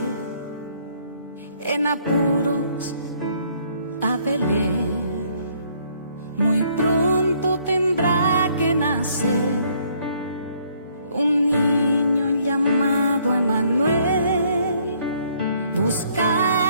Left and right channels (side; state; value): both; inverted; correlation -0.65